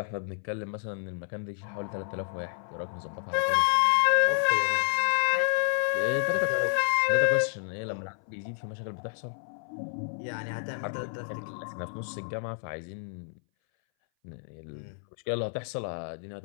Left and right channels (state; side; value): silent; right; 58 dB below the other